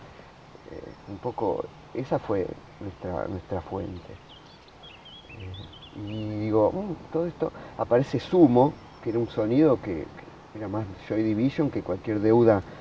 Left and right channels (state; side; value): identical; both; correlation 1.00